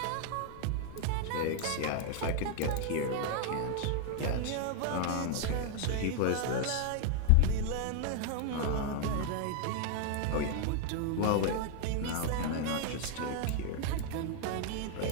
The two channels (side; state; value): both; different; correlation 0.00